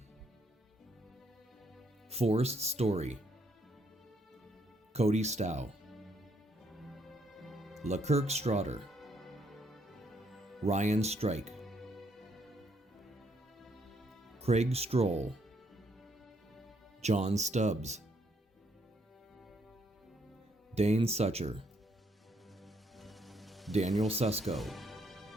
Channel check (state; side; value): normal; both; correlation 0.71